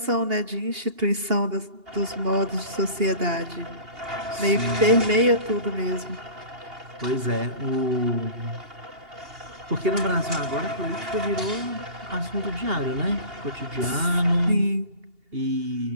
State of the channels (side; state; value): left; late; 2.8 ms